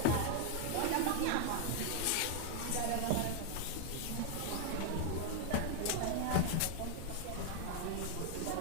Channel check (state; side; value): different; both; correlation 0.00